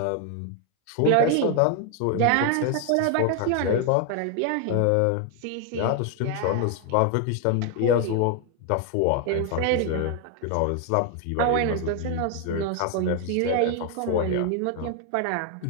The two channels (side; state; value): both; different; correlation 0.00